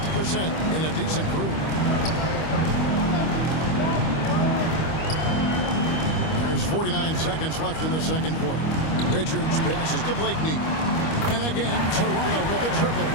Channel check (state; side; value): late; right; 25 ms